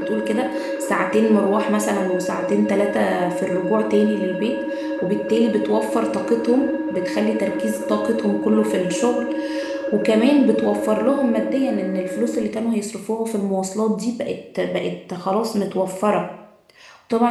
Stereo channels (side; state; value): both; identical; correlation 1.00